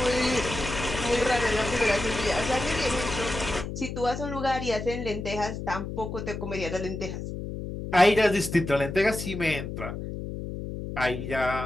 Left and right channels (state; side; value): noise; left; hum, 7 dB below the sound